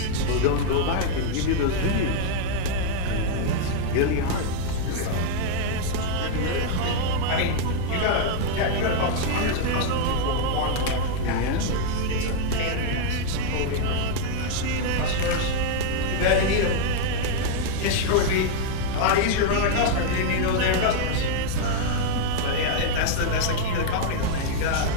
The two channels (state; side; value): different; both; correlation 0.00